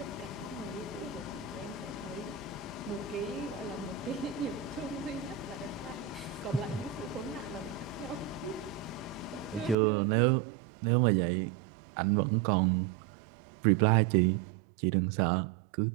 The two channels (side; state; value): left; drops out; at 9.8 s